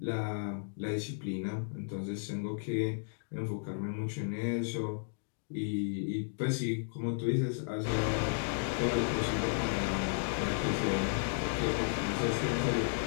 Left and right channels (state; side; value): silent; right; digital silence